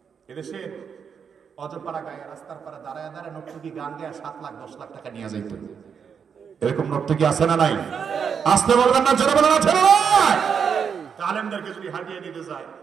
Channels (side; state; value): left; quieter; 6.9 dB